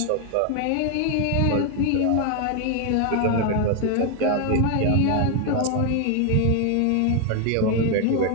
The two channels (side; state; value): both; different; correlation 0.00